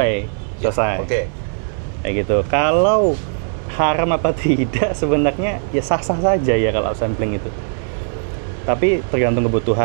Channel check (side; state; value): left; silent; digital silence